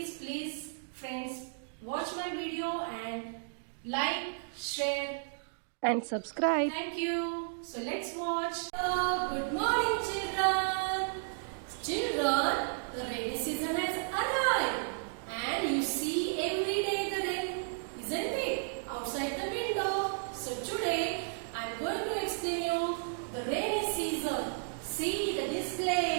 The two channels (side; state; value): left; silent; digital silence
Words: friends, watch my video and like, share and subscribe. Thank you. So let's watch. Good morning children. Children, the rainy season has arrived and you see every day the rain, isn't it? Outside the window. So today I am going to explain you the rainy season. See the